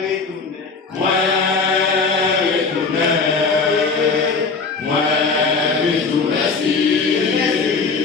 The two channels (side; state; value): right; quieter; 4.6 dB